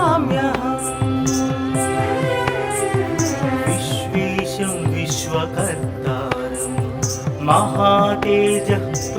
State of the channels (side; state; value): both; identical; correlation 1.00